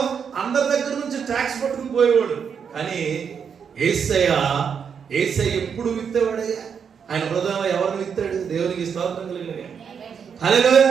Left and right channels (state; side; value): quieter; left; 6.9 dB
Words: అందరి దగ్గర నుంచి ట్యాక్స్ పట్టుకుని పోయేవాడు. కానీ యేసయ్య ఎప్పుడు విత్తేవాడయ్యా? ఆయన హృదయంలో ఎవరిని విత్తాడు? దేవునికి స్తోత్రం కలిగిన